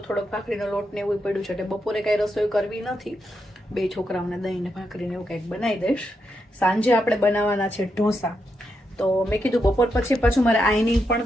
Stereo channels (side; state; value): both; normal; correlation 0.83